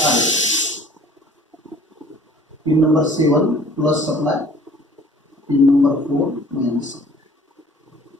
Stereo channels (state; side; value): normal; both; correlation 0.52